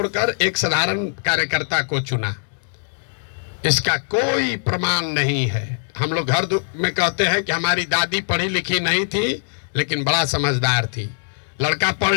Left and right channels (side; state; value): right; silent; digital silence